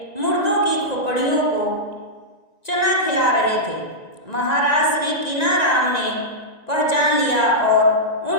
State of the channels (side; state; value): right; late; 1.9 ms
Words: मुर्दों की खोपड़ियों को चना खिला रहे थे। महाराज श्री कीनाराम ने पहचान लिया और